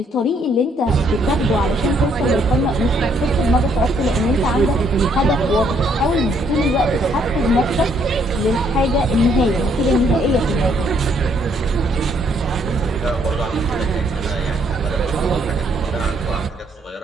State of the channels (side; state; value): both; normal; correlation 0.69